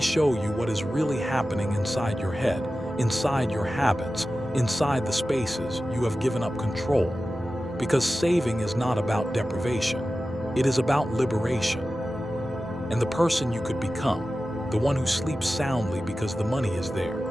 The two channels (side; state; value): both; normal; correlation 0.94